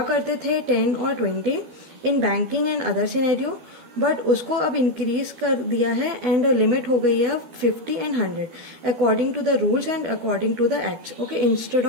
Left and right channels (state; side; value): late; left; 12 ms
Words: करते थे 10 और 20 in banking and other scenario, but उसको अब इंक्रीज कर दिया है एंड लिमिट हो गई है अब 50 and 100 according to the rules and according to the acts. Okay, instead